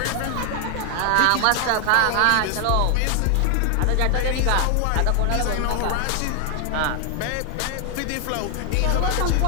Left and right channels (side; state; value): both; different; correlation 0.00